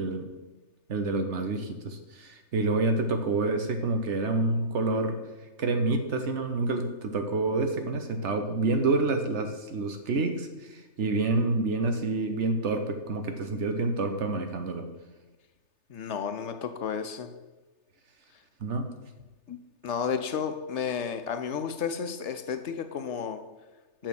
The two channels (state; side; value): late; left; 3.3 ms